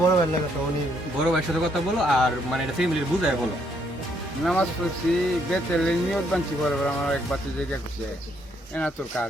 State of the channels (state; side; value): normal; both; correlation 0.71